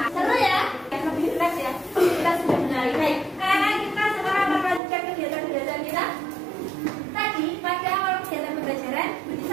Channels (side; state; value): left; drops out; at 4.8 s